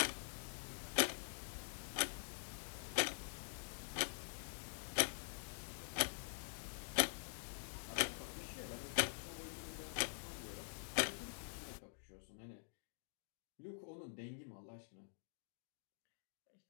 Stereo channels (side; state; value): right; silent; digital silence